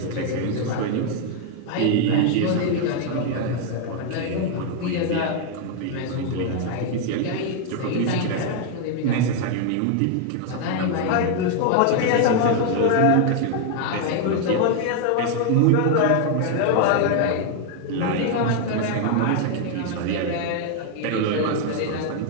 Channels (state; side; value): different; both; correlation 0.00